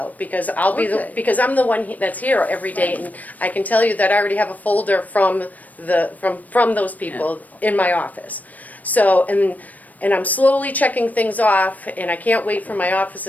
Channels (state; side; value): late; right; 0.076 ms